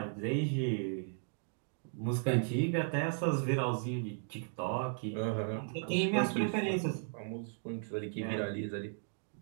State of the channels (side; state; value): left; silent; digital silence